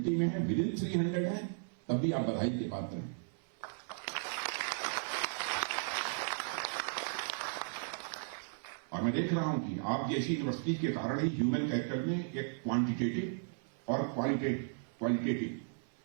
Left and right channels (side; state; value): left; silent; 54 dB below the other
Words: में है, विदिन 300 है, तब भी आप बधाई के पात्र हैं। और मैं देख रहा हूं कि आप जैसी यूनिवर्सिटी के कारण ही ह्यूमन कैपिटल में एक क्वांटिटेटिव और क्वालिटेटिव